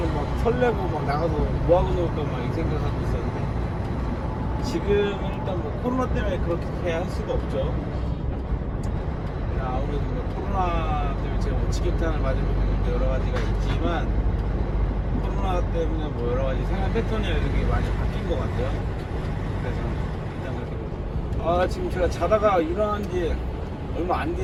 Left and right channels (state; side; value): identical; both; correlation 1.00